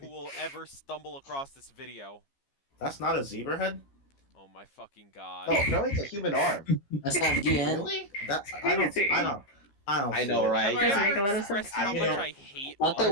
will ever stumble across this video. That's not a zebra head? Oh my fucking god. No, no, it's a human arm. That's not DN. Really? That I don't Crazy. I don't I see know, it. right? Have I Doesn't make ever a lot of expressed sense. how I much know. I hate I thought that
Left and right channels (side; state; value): right; late; 15 ms